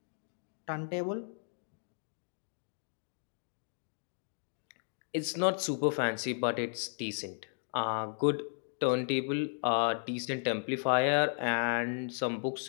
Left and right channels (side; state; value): right; silent; digital silence